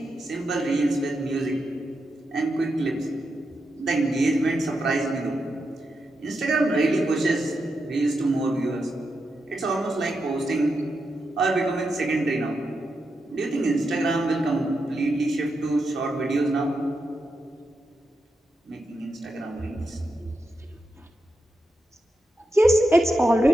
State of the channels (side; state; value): both; normal; correlation 0.86